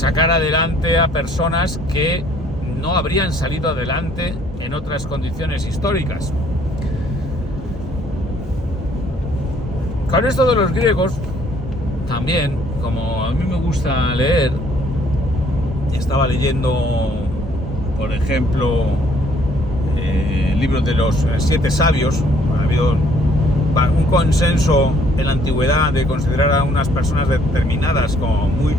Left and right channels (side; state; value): both; normal; correlation 0.62